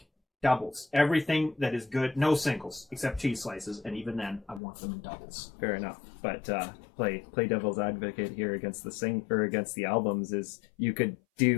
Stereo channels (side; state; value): right; drops out; at 4.6 s